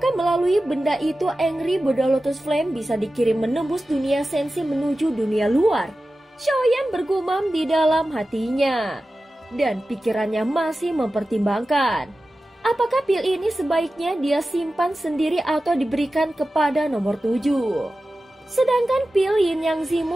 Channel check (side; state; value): both; normal; correlation 0.94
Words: melalui benda itu Angry Buddha Lotus Flame bisa dikirim menembus dunia sensi menuju dunia luar? Xiaoyan bergumam di dalam hatinya, dan pikirannya masih mempertimbangkan. Apakah pil ini sebaiknya dia simpan sendiri atau diberikan kepada nomor 7? Sedangkan pil Yin Yang